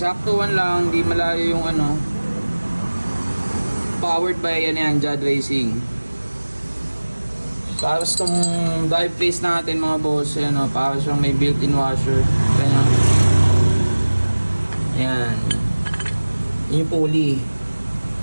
lang, di malayo yung powered by Jad Racing. Tapos itong drive face natin, mga boss, ayan, para siyang may built-in washer. Ayan. Ayan. Yung pulley.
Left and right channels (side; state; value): both; inverted; correlation -1.00